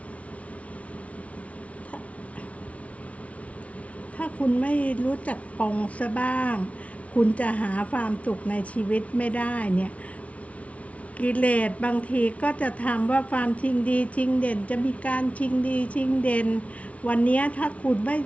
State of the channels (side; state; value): right; late; 0.065 ms